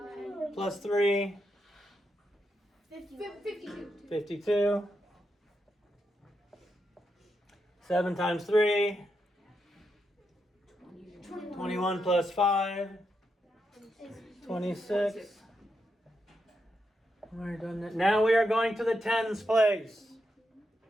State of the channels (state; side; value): normal; both; correlation 0.84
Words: Plus 3? 52. 52. 7 times 3? 21 plus 5? 26. We're done that. Now we are going to the tens place.